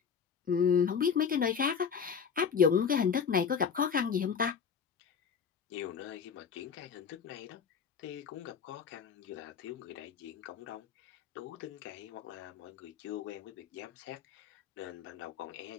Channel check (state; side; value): quieter; right; 6.7 dB